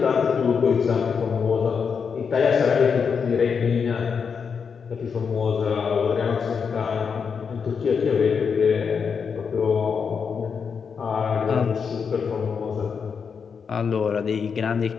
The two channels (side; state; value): right; quieter; 6.1 dB